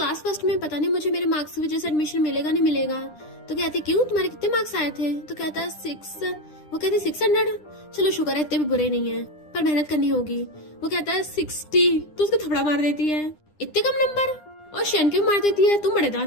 फर्स्ट में पता नहीं मुझे मेरे मार्क्स की वजह से एडमिशन मिलेगा नहीं मिलेगा। तो कहती क्यों तुम्हारे कितने मार्क्स आए थे। तो कहता है 6। वो कहती 600। चलो शुक्र है इतने भी बुरे नहीं है, पर मेहनत करनी होगी। वो कहता है 60। तो उसको थपड़ा मार देती है इतने कम नंबर, और शेन के मार देती है तुम बड़े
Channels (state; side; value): late; right; 9.9 ms